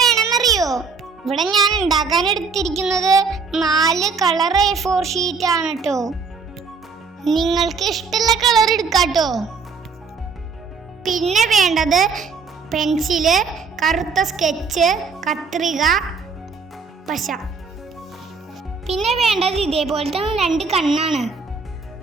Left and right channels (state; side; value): quieter; left; 5.0 dB